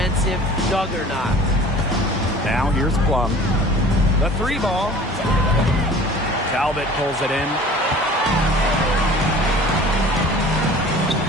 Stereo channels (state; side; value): normal; both; correlation 0.45